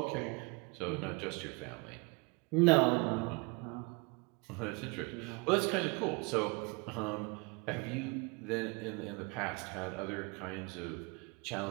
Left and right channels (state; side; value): quieter; left; 29.6 dB